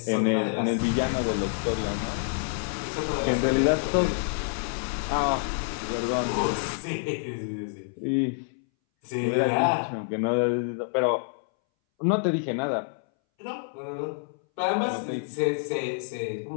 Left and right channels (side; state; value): right; silent; 60 dB below the other